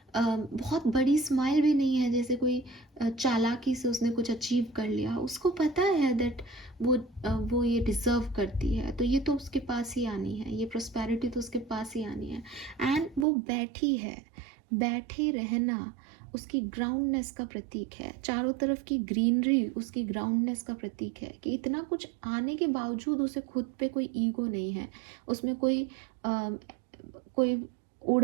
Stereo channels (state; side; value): drops out; left; at 13.2 s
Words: बहुत बड़ी स्माइल भी नहीं है जैसे कोई चालाकी से उसने कुछ अचीव कर लिया। उसको पता है दैट वो ये डिज़र्व करती है, तो ये तो उसके पास ही आनी है, ये प्रॉस्पेरिटी तो उसके पास ही आनी है। एंड वो बैठी है, बैठे रहना उसकी ग्राउंडनेस का प्रतीक है। चारों तरफ की ग्रीनरी उसकी ग्राउंडनेस का प्रतीक है, कि इतना कुछ आने के बावजूद उसे खुद पे कोई ईगो नहीं है, उसमें कोई